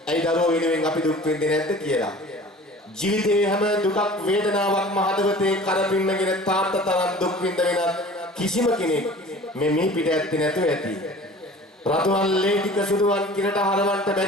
ඇයි දරුවෝ වෙනුවෙන් අපි දුක් විඳින්නේ නැද්ද කියලා ජීවිතේ හැම දුකක් වේදනාවක්ම හදවතේ කරපින්නගෙන තාත්තා තරම් දුක් විඳ වෙනත් කිසිම කෙනෙක් මේ මිහි පිට ඇත්තේ නැතුව ඇති රතුවන් ලේ ටික සුදුවන් කිරට හරවන්න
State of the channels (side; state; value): both; normal; correlation 0.43